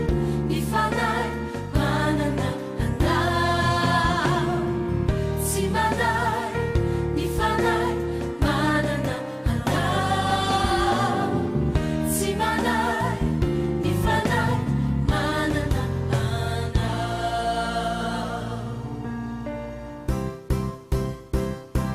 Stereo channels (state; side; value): identical; both; correlation 1.00